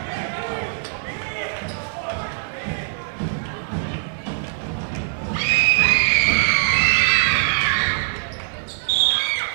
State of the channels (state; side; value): silent; left; digital silence